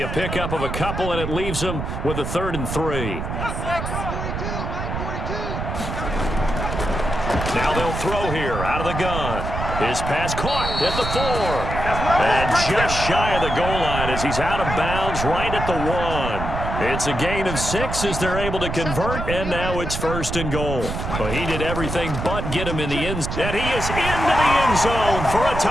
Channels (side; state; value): right; noise; rumble, 4 dB below the sound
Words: a pickup of a couple, and it leaves him with a 3rd and 3. Now they'll throw here out of the gun. His pass caught at the 4. And just shy of the goal line as he's out of bounds right at the 1. It's a gain of 6 as they're able to convert, and now it's 1st and goal. But he did everything but get him in the end zone. And he is into the end zone for a